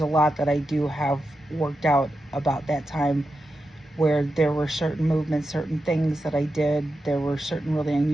lot that I do have worked out about that time, where there were certain movements, certain things that I did. There were certain really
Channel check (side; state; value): both; normal; correlation 0.89